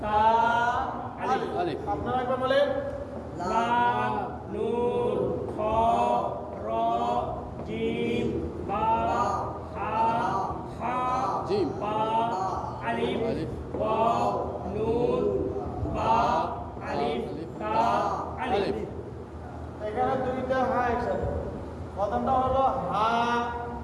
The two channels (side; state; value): both; identical; correlation 1.00